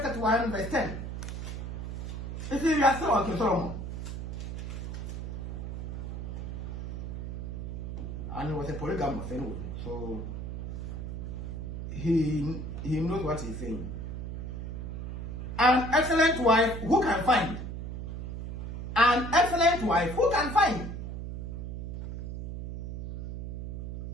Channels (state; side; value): noise; right; hum, 6 dB below the sound